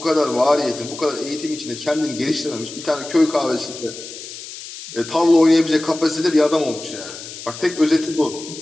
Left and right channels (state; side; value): noise; left; hiss, 12 dB below the sound